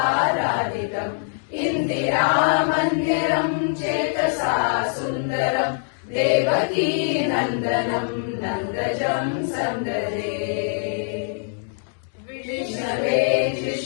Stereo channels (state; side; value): silent; right; digital silence